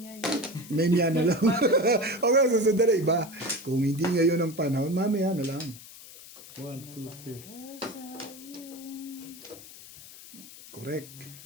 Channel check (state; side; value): noise; left; hiss, 17 dB below the sound